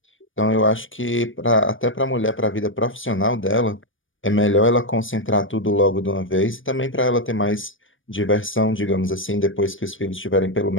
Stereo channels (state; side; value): late; right; 0.57 ms